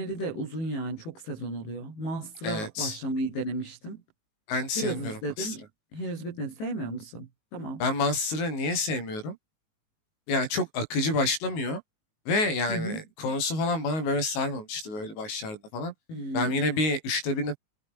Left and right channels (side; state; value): right; late; 19 ms